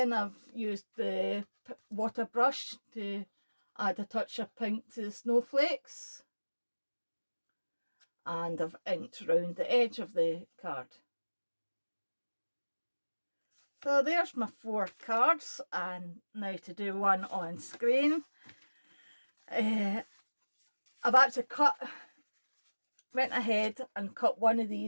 I've used the water brush to add a touch of pink to the snowflakes, and I've inked round the edge of the card. So there's my 4 cards, and now to do one on screen. I've actually went ahead and cut one of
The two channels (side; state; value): both; inverted; correlation -1.00